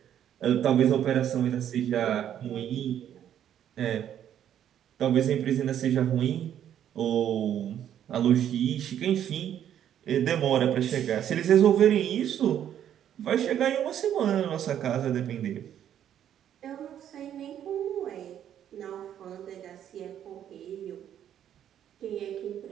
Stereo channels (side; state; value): left; quieter; 10.2 dB